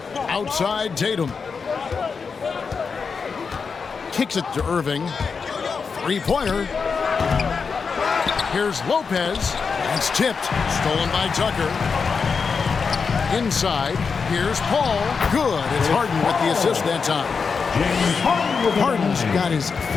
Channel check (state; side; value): quieter; right; 5.4 dB